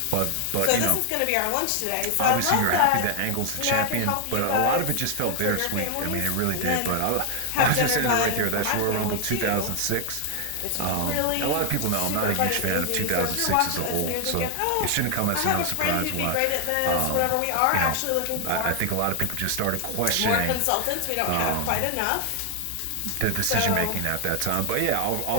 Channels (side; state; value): both; different; correlation 0.00